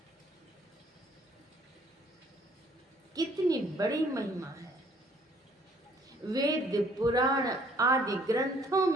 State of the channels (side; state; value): both; normal; correlation 0.61